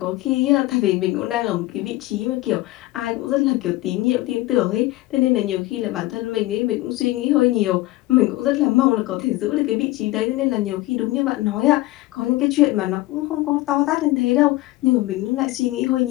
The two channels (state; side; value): quieter; right; 18.4 dB